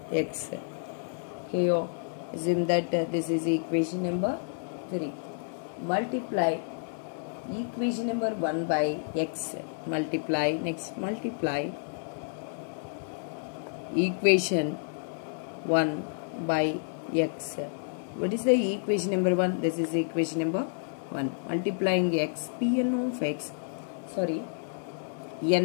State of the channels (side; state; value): right; silent; digital silence